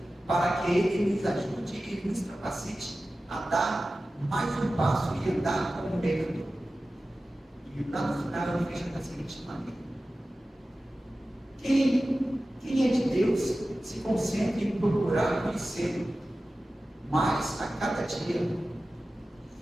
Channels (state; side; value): normal; both; correlation 0.95